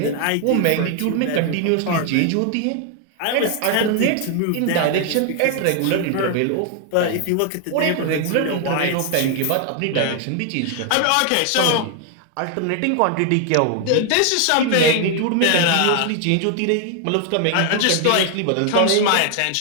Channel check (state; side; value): different; both; correlation 0.00